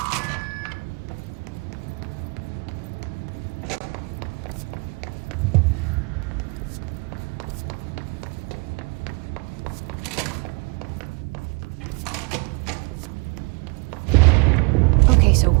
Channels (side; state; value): left; quieter; 29.3 dB